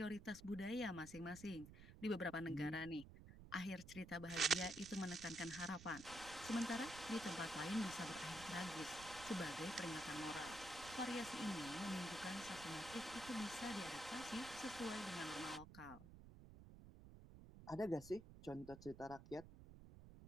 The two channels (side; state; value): right; noise; rumble, 15 dB below the sound